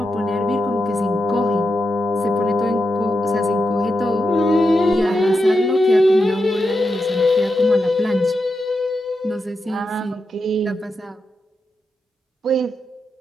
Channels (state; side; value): normal; both; correlation 0.87